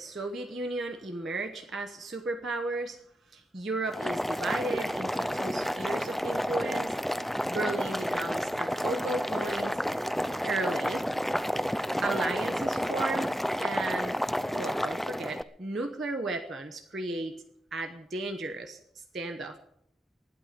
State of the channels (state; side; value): normal; both; correlation 0.86